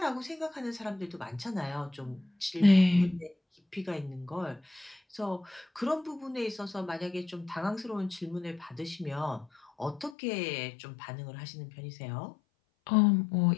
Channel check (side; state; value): right; drops out; at 10.2 s